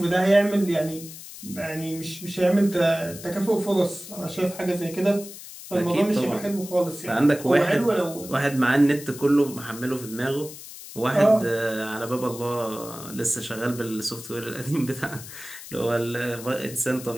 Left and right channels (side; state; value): left; noise; hiss, 14 dB below the sound